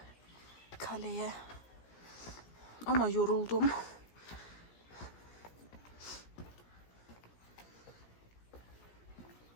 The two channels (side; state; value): right; late; 17 ms